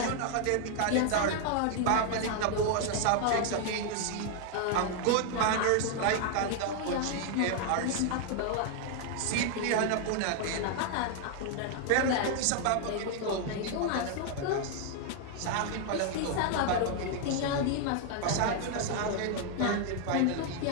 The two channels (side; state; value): both; different; correlation 0.00